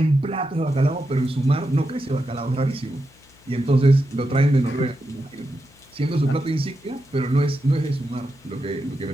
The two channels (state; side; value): noise; left; hum, 29 dB below the sound